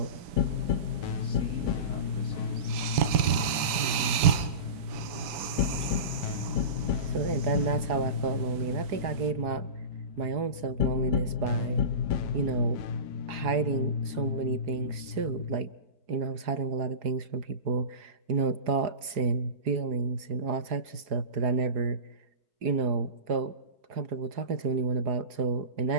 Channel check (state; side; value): late; left; 4.6 ms